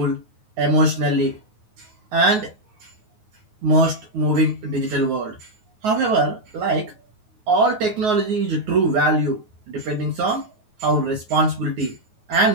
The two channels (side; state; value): left; late; 9.4 ms